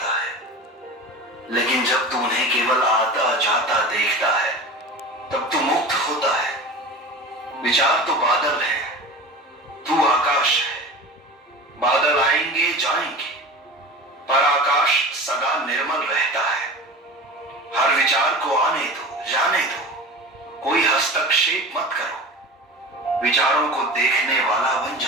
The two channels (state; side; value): normal; both; correlation 0.33